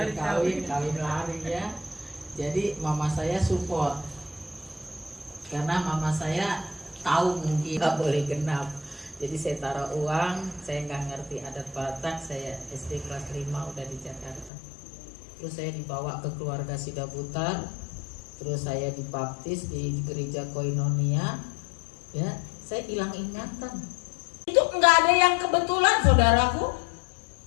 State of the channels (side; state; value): right; drops out; at 14.5 s